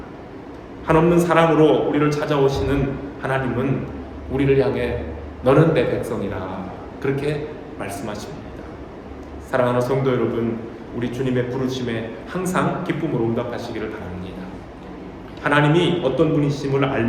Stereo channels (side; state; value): both; identical; correlation 1.00